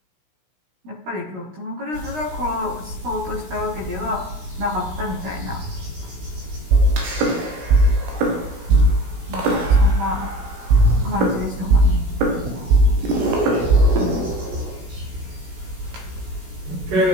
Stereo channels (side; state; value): left; late; 16 ms